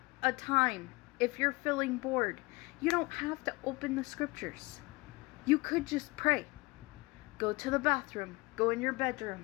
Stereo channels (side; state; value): right; quieter; 24.3 dB